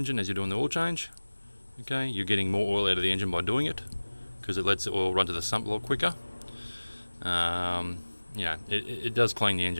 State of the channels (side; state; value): both; inverted; correlation -1.00